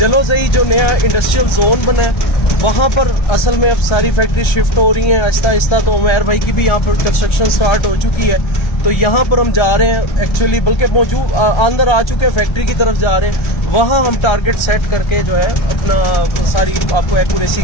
जो नया इंडस्ट्रियल जोन बना है वहाँ पर असल में अब सारी फैक्ट्री शिफ्ट हो रही हैं आहिस्ता आहिस्ता। तो उमैर भाई की भी यहाँ पर कंस्ट्रक्शन स्टार्ट हो चुकी है, तो यहाँ पर हम जा रहे हैं एक्चुअली, बल्कि मौजूद अंदर आ चुके हैं, फैक्ट्री की तरफ जा रहे हैं। वहाँ हम टारगेट सेट करके जो है अपना सारी आपको एक्यूरेसी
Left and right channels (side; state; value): right; late; 1.3 ms